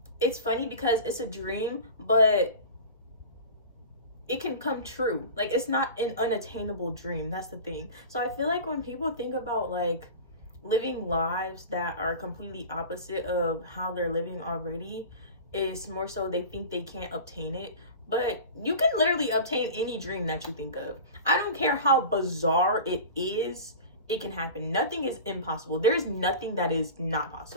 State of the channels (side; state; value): both; inverted; correlation -0.34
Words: it's funny because it's a dream, but it can come true. Like, it's not an unattainable dream. That's the thing. So I feel like when people think about like living lives that are completely opposite of how they're living already, it's more so they think they can't obtain it. But you can literally obtain any dream that you think of. I don't care how bizarre it is, it can happen. Nothing is impossible. There's nothing that is not